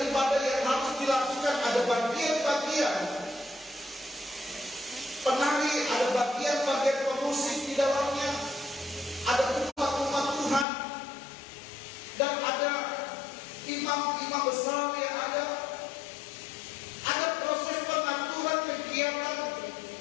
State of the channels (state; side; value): drops out; right; at 10.7 s